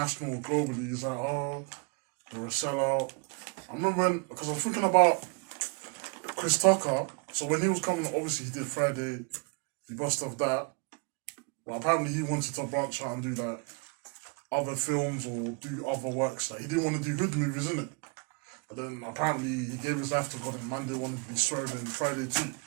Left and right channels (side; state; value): left; quieter; 34.4 dB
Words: or globally. It's like, oh, they're a sellout. I remember because I was thinking about Chris Tucker. So when he was coming, obviously he did Friday, he bust off that. But apparently he wanted to branch out and do like other films or do other works. Like he didn't want to do hood movies, innit? But then apparently he gave his life to God and man didn't want to be swerved in Friday too.